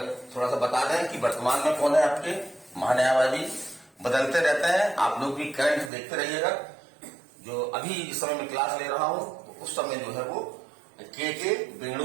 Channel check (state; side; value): drops out; left; at 5.9 s